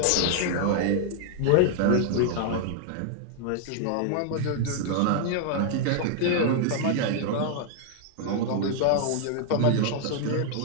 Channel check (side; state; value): both; different; correlation 0.00